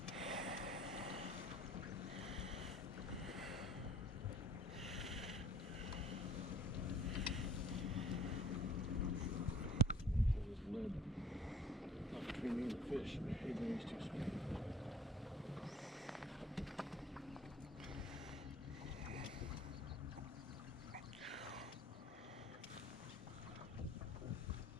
Between me and the fish, even these two small.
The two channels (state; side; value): normal; both; correlation 0.52